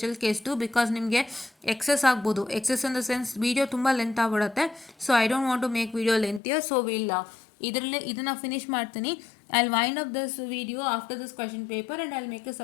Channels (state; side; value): drops out; right; at 6.4 s